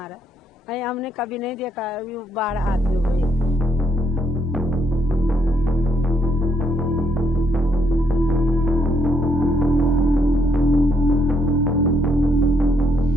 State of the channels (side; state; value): both; normal; correlation 0.73